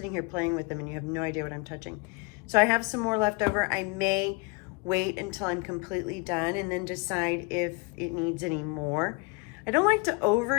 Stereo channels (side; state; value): right; quieter; 30.1 dB